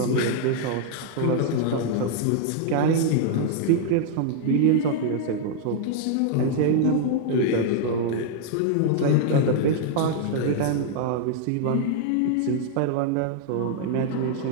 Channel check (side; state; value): both; different; correlation -0.01